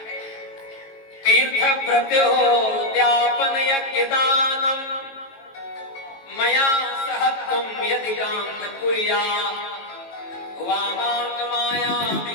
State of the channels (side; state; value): right; late; 18 ms